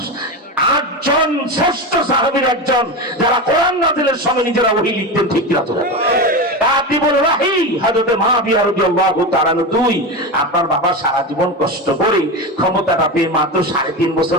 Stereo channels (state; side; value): normal; both; correlation 0.20